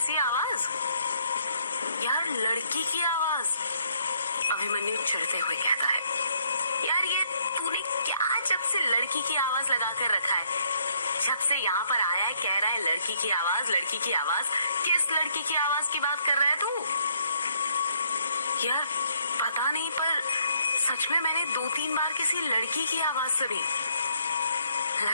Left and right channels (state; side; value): inverted; both; correlation -0.70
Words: आवाज? यार लड़की की आवाज। अभिमन्यु चिढ़ते हुए कहता है, यार ये तूने क्या जब से लड़की की आवाज लगा कर रखा है? जब से यहाँ पर आया है कह रहा है लड़की की आवाज, लड़की की आवाज। किस लड़की की आवाज की बात कर रहा है तू? यार पता नहीं, पर सच में मैंने 2-3 बार किसी लड़की की आवाज सुनी।